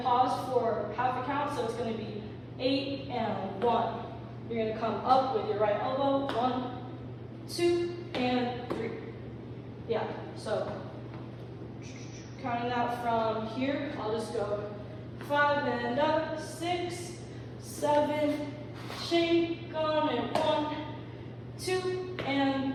pause for half a count, so it's going to be 8 and 1. You're going to come up with your right elbow. 1, 2, and 3. Yeah, so counting that from here, I'll just go 5 and up, 6, 7, shake on it, 1, 2,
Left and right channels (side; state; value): both; identical; correlation 1.00